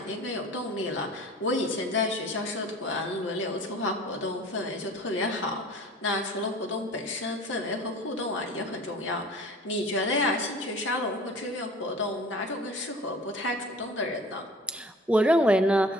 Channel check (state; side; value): normal; both; correlation 0.43